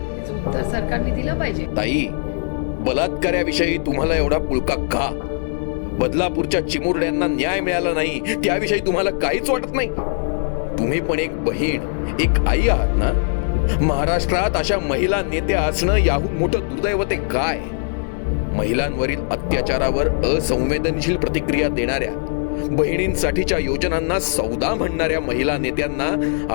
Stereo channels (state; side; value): silent; right; 63 dB below the other